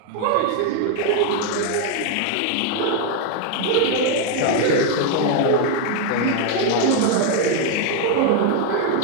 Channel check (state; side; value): different; both; correlation 0.00